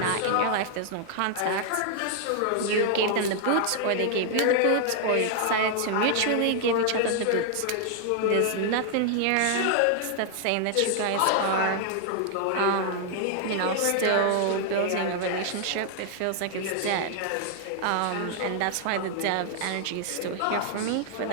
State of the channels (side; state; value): both; different; correlation 0.00